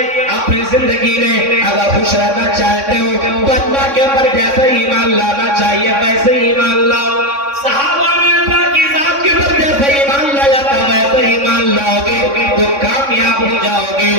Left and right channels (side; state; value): left; late; 3.6 ms